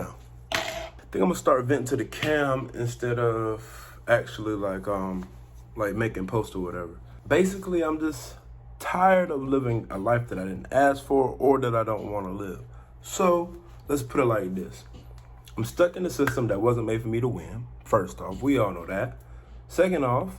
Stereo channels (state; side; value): identical; both; correlation 1.00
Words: I think I'm gonna start venting to the cam instead of actually like making posts or whatever. Basically, I'm just tired of living a life that I didn't ask for or that I don't want to live. So let's put it like this. I'm stuck in a system that wasn't made for me to win. First off, we all know that. Second